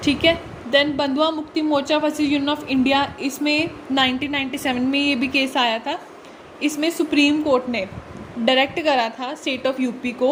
ठीक है। देन बंधुआ Mukti Morcha versus union of India, इसमें 1997 में ये भी केस आया था। इसमें सुप्रीम कोर्ट ने डायरेक्ट करा था स्टेट ऑफ UP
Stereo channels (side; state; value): both; identical; correlation 1.00